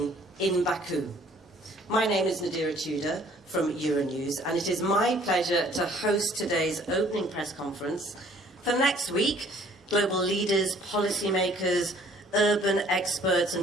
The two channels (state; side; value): normal; both; correlation 0.57